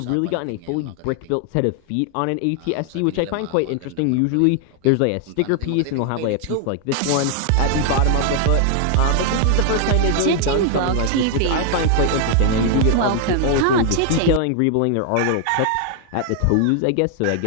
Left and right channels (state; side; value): different; both; correlation 0.00